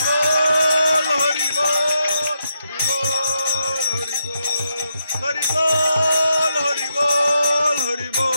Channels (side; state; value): both; inverted; correlation -0.81